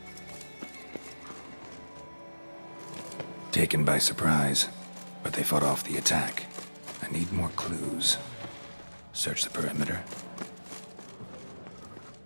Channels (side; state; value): both; inverted; correlation -1.00